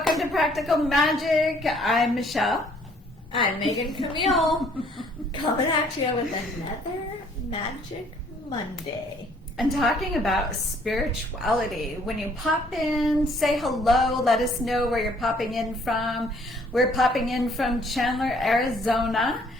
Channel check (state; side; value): normal; both; correlation 0.61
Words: to Practical Magic. I'm Michelle. I'm Megan Camille. Coming at you with another Magic Monday. And talking about spirituality. When you pop in, say hello, let us know where you're popping in from. We're popping in from Chandler, Arizona.